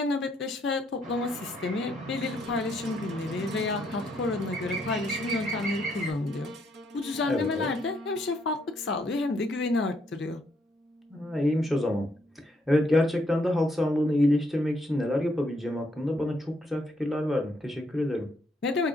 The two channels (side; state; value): both; normal; correlation 0.73